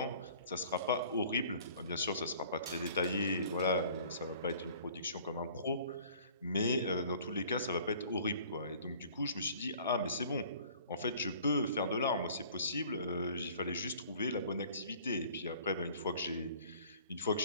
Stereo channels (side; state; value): both; inverted; correlation -0.51